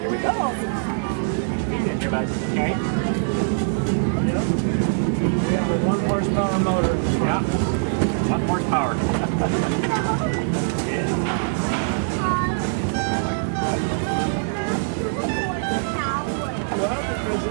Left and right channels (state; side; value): silent; left; 56 dB below the other